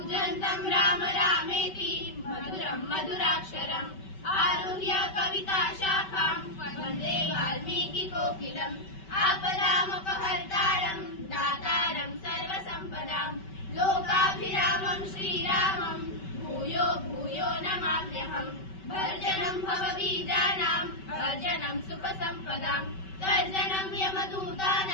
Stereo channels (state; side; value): late; right; 5.2 ms